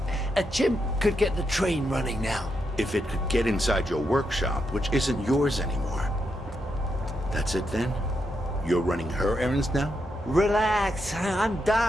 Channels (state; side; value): normal; both; correlation 0.82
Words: a chimp could get the train running now. If it could get inside your workshop, which isn't yours anymore. That's it then? You're running her errands now? Relax, I'm